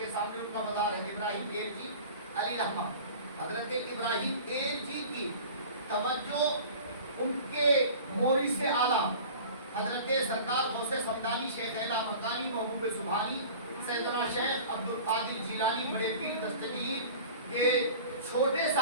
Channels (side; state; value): both; inverted; correlation -0.40